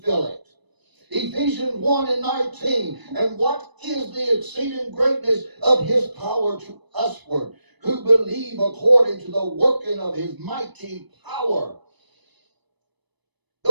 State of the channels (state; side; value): late; left; 1.0 ms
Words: feel it. Ephesians 1 and 19. And what is the exceeding greatness of his power to usward, who believe according to the working of his mighty power?